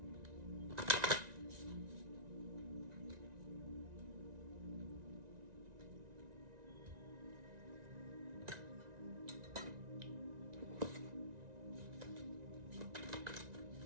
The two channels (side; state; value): left; late; 1.9 ms